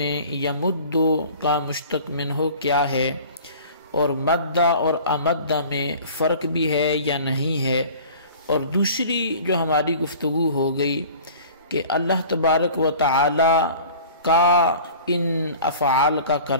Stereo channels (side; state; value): both; inverted; correlation -0.44